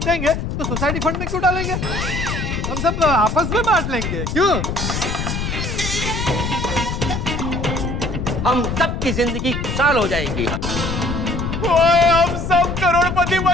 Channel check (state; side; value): noise; left; rumble, 3 dB below the sound